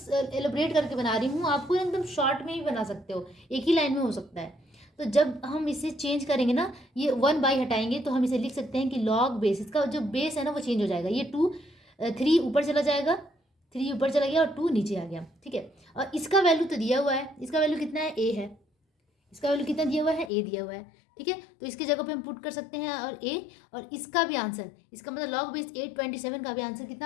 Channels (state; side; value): drops out; right; at 20.3 s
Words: करके बना रही हूँ, आपको एकदम शॉर्ट में ही बना सकते हो, एक ही लाइन में हो सकता है। तो जब हम इसे चेंज करेंगे ना, ये 1/, हटाएंगे तो हम इसे लिख सकते हैं कि लॉग बेस, इसका जो बेस है ना वो चेंज हो जाएगा। ये 2 3 ऊपर चला जाएगा, 3 ऊपर चला गया और 2 नीचे आ गया, ठीक है। और इसका वैल्यू तो दिया हुआ है, इसका वैल्यू कितना है, ए है। इसका वैल्यू कितना दिया हुआ है, ए दिया हुआ है, ठीक है। तो इसकी जगह पे हम पुट कर सकते हैं और ए, और इसका भी आंसर, इसका मतलब लॉग बेस 827 का भी आंसर